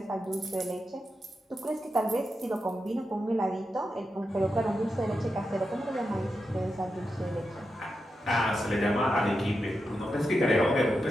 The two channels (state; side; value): normal; both; correlation 0.88